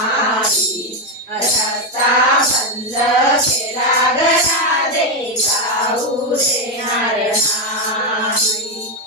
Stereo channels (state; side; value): normal; both; correlation 0.06